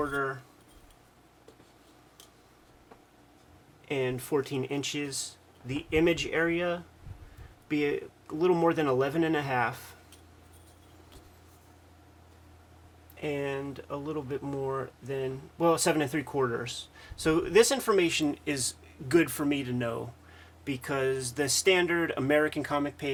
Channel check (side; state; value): both; identical; correlation 1.00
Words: and 14 inches. The image area be a little more than 11.5 and a little bit more than 7 3/4. So this information is good for me to know because the standard American comic